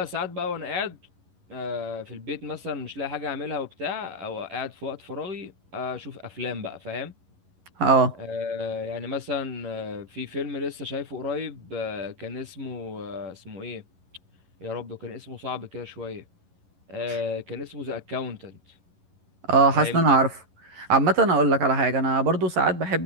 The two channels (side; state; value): left; late; 11 ms